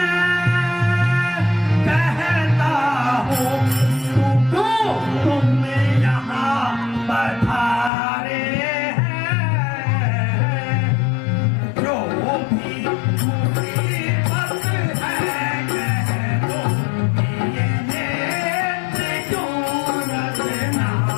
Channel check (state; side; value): drops out; right; at 7.9 s